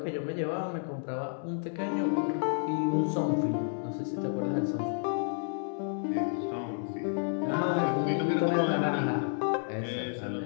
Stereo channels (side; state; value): right; silent; digital silence